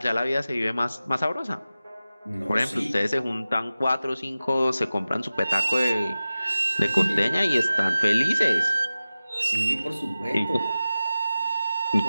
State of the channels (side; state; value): both; inverted; correlation -0.95